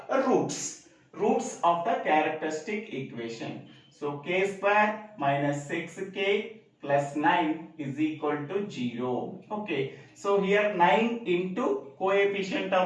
roots of the characteristic equation. So k square minus 6k plus 9 is equal to 0. Okay. So here 9 into coefficient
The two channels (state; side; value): identical; both; correlation 1.00